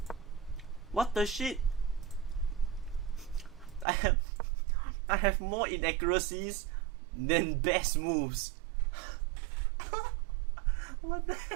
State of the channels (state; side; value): drops out; left; at 3.9 s